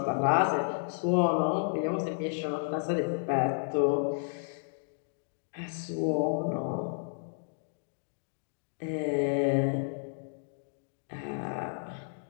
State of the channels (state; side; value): silent; right; digital silence